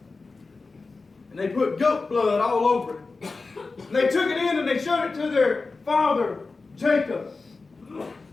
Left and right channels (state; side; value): quieter; right; 3.9 dB